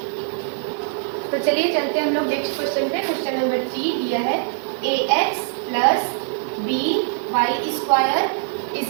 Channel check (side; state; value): left; silent; 57 dB below the other